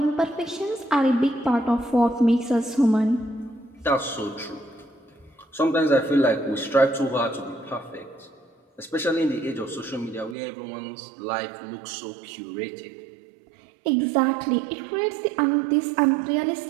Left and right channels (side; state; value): left; drops out; at 10.4 s